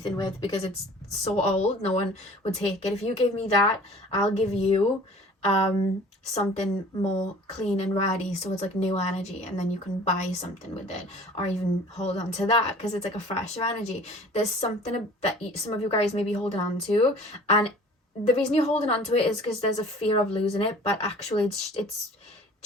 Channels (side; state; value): both; normal; correlation 0.47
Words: with because it's so old, no one would take it. If you give me that, I'll give you something more clean and ready, so it's like new energy, and then you can buy something with it or even hold on to that because it's like a fresher energy. There's something that some of you guys may be holding on to, and the reason you're holding on to it is because there's a fear of losing it, but actually it's